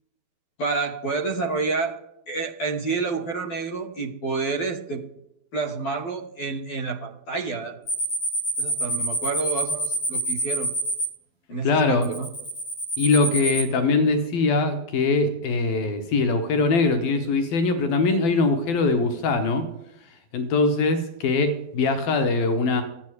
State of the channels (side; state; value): right; late; 12 ms